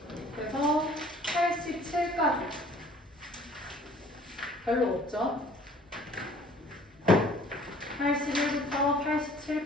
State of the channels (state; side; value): normal; both; correlation 0.53